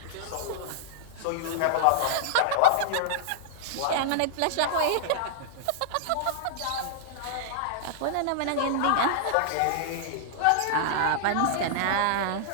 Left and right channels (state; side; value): different; both; correlation -0.01